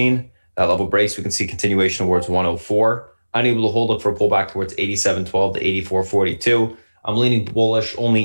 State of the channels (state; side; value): inverted; both; correlation -1.00